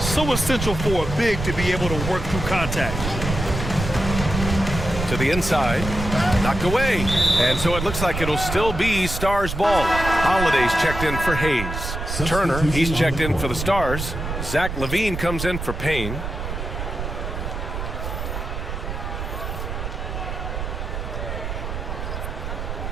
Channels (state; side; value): noise; right; rumble, 5 dB below the sound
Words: essential for a big to be able to work through contact. To the inside. Knocked away. And so it looks like it'll still be Stars ball. Holiday's checked in for Hayes. Turner, he's checked in for the Stars. Zach LaVine comes in for Payne.